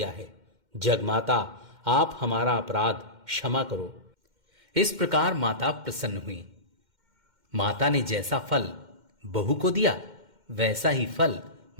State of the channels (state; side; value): late; left; 2.1 ms